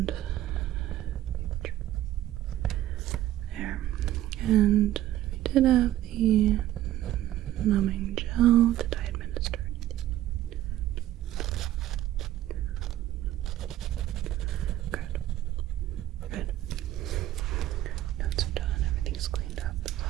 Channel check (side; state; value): left; quieter; 13.9 dB